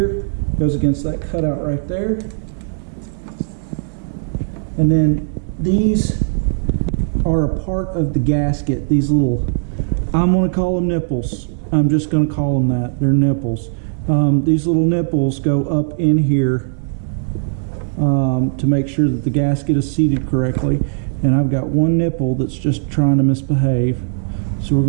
goes against that cutout right there. And then these are a part of the gasket. These little, I'm going to call them nipples. I'm just going to call them that. They're nipples. These little nipples go up in here to make sure that the gasket is seated correctly. And I've got one nipple that's just trying to misbehave. So we're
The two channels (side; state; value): left; silent; digital silence